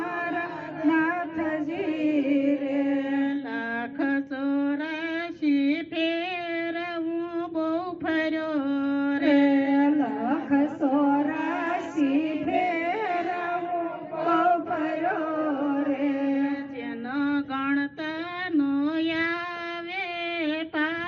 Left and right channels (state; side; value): identical; both; correlation 1.00